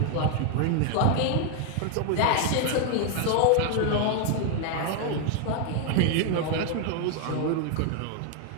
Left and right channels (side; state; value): both; different; correlation 0.00